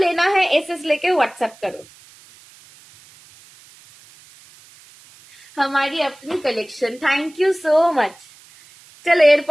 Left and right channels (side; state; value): right; noise; hiss, 25 dB below the sound